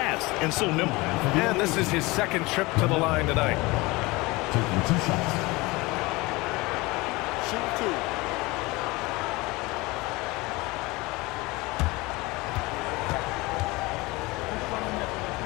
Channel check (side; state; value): right; quieter; 22.8 dB